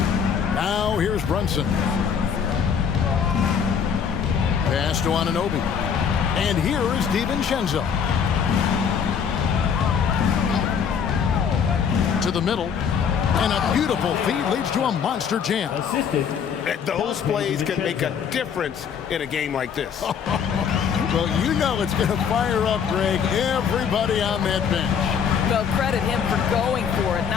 Now here's Brunson. Pass to Anunoby. And here is DiVincenzo. To the middle. And a beautiful feed leads to a monster jam. Assisted. Those plays can make a difference in a game like this. Well, you know it's going to fire up, Greg, everybody on that bench. Well, credit him for going for it,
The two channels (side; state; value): right; quieter; 7.1 dB